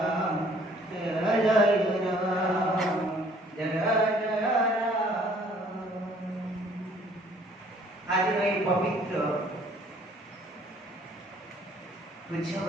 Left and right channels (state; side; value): normal; both; correlation 0.59